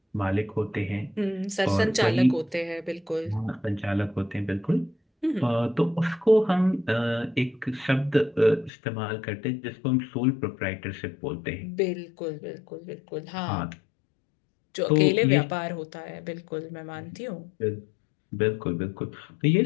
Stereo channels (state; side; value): drops out; right; at 8.7 s